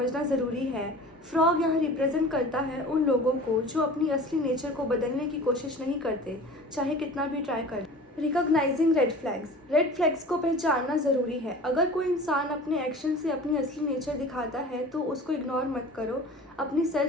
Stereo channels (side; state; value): both; normal; correlation 0.40